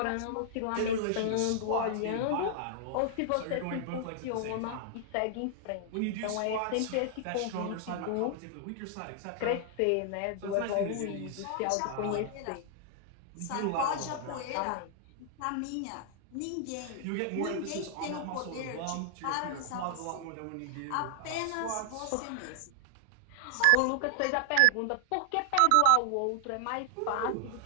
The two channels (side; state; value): both; different; correlation 0.00